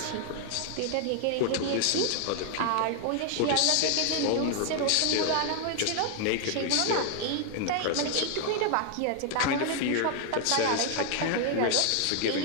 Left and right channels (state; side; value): different; both; correlation 0.00